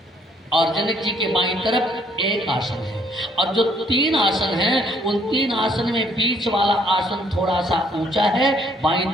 और जनक जी के बाईं तरफ एक आसन है। और जो 3 आसन हैं, उन 3 आसन में बीच वाला आसन थोड़ा सा ऊंचा है, बाईं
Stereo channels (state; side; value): normal; both; correlation 0.65